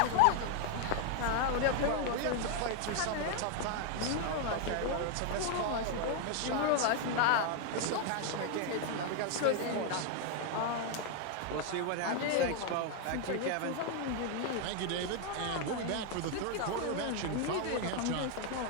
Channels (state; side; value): different; both; correlation 0.00